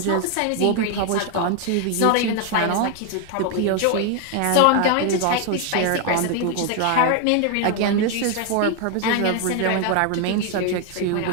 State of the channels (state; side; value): different; both; correlation 0.01